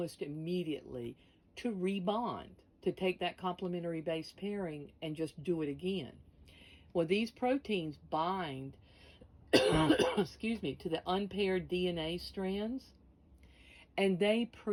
immediately to rebond, to take that complementary base pairing and just do it again. Well, these proteins bind, excuse me, to the unpaired DNA strands, and they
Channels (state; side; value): identical; both; correlation 1.00